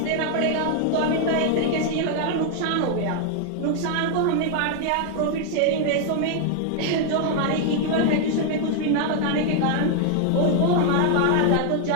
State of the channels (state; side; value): different; both; correlation 0.00